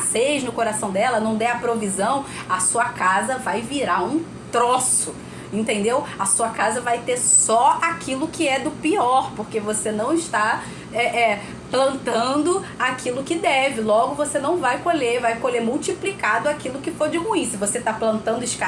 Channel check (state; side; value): identical; both; correlation 1.00